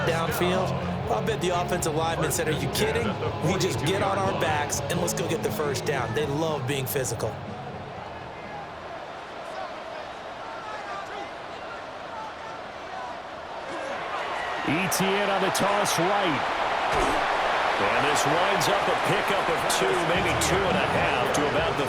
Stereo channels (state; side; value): identical; both; correlation 1.00